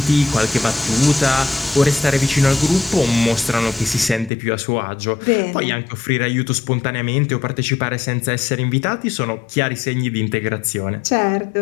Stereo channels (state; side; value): drops out; right; at 4.3 s